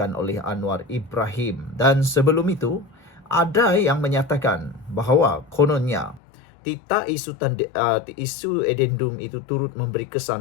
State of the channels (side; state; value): right; drops out; at 6.2 s